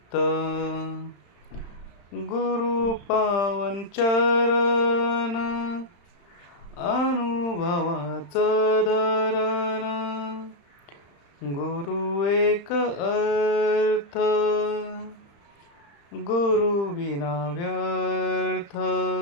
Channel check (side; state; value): right; late; 35 ms